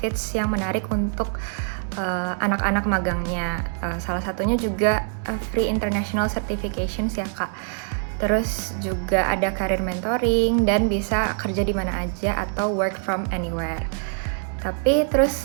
yang menarik untuk anak-anak magangnya. Salah satunya juga free international certifications ya, Kak. Terus juga ada career mentoring dan bisa kerja di mana aja atau work from anywhere. Tapi terus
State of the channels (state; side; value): silent; left; 63 dB below the other